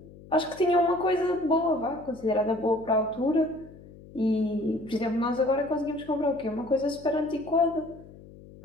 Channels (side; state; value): left; noise; hum, 20 dB below the sound